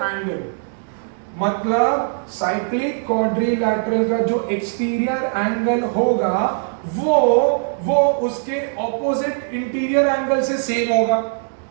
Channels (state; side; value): silent; left; 64 dB below the other